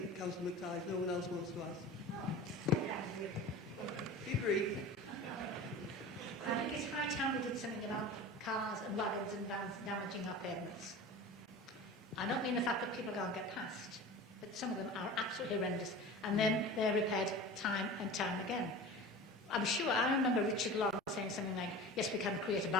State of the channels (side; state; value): both; normal; correlation 0.35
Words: Councillor McTighe, if no one else wants to ask. Be brief. I think it's high time we did something about cars and wagons and vans damaging our pavements. I don't mean the fact that people can't get past, but some of them are absolutely horrendous, and then they're repaired time and time again. I'm sure, I remember Richard Long saying something like, yes, we can create a